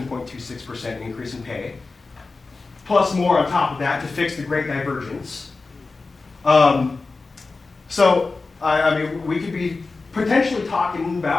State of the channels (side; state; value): right; quieter; 3.8 dB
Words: increase in pay, plus more on top of that to fix the great divergence. So, I mean, we could be potentially talking